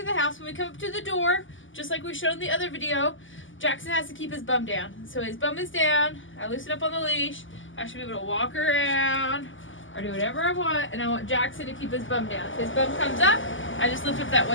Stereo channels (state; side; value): late; right; 0.57 ms